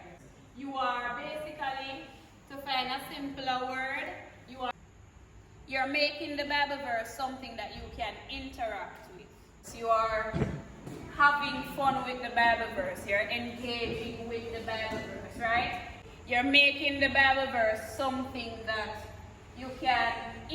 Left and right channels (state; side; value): identical; both; correlation 1.00